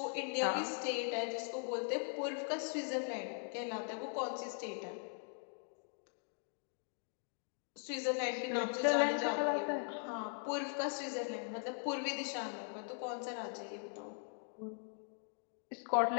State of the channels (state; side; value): silent; right; 51 dB below the other